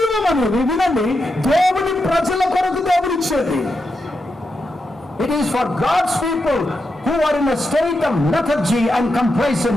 అనేది వినండి, దేవుని ప్రజల కొరకు దేవుడిచ్చేది. It is for God's people who are in a state of lethargy and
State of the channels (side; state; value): both; normal; correlation 0.86